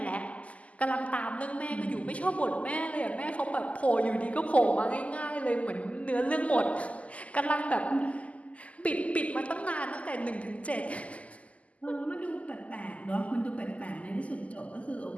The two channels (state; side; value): late; right; 0.068 ms